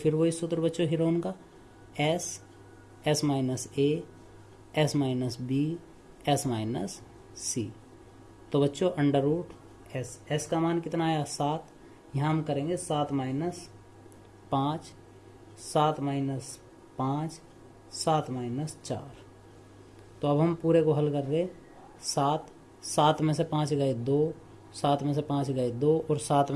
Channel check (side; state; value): both; identical; correlation 1.00